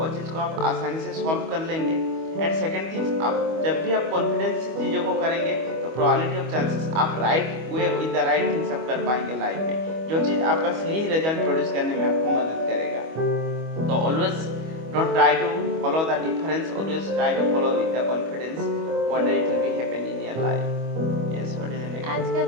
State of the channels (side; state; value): left; late; 25 ms